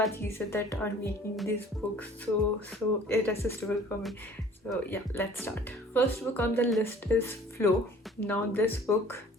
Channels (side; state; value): both; normal; correlation 0.50